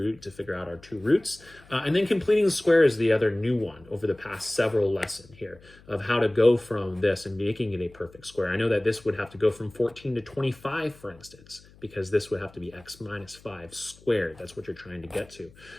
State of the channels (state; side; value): noise; left; hum, 25 dB below the sound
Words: to figure out our 2 roots, and then completing the square is the other new one over the past several lessons here of how to go from this and making it a perfect square. I know that this would have to go from 14 to 25, for instance, because this would have to be x minus 5 squared. That's what you're trying to get to.